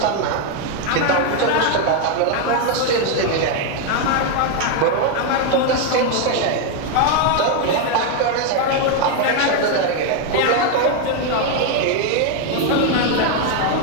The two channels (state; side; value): different; both; correlation 0.01